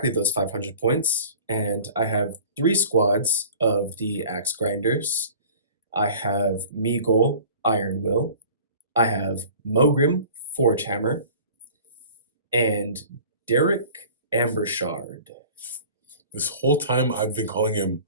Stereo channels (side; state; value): both; inverted; correlation -0.44